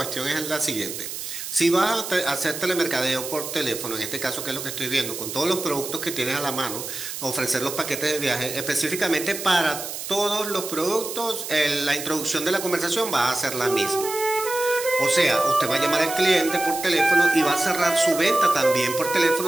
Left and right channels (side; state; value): right; noise; hiss, 7 dB below the sound